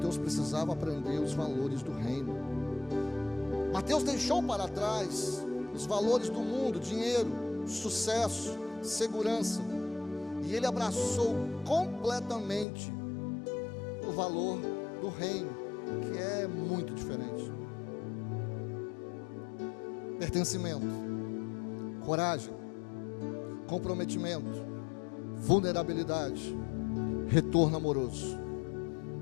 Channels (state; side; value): drops out; right; at 12.7 s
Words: precisava aprender os valores do reino. Mateus deixou para trás os valores do mundo, dinheiro, sucesso, segurança, e ele abraçou completamente o valor do reino, que é muito diferente. Pertencimento, coragem, comprometimento, vulnerabilidade, retorno amoroso.